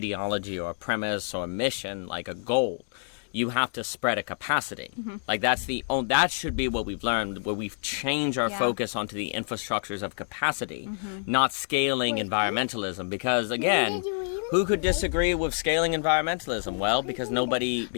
or a premise or a mission like a goal. You have to spread a capacity. Mm-hmm. Like, that should be what we've learned, where we've changed our focus onto the infrastructures of capacity, not scaling environmentalism. Because, again, who could disagree with scaling environmentalism? Well, because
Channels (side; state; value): right; silent; digital silence